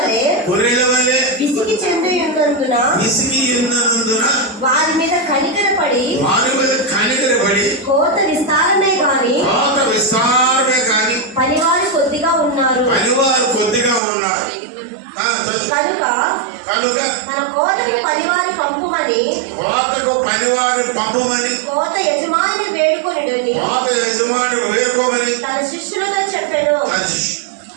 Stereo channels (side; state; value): left; drops out; at 14.0 s